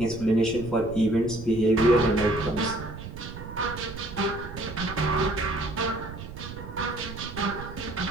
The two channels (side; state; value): right; noise; rumble, 11 dB below the sound